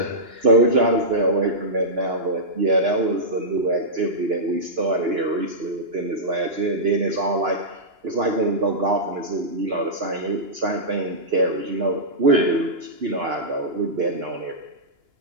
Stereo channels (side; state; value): left; late; 2.9 ms